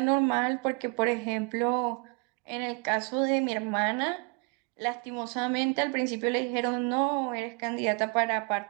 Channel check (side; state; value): left; quieter; 32.1 dB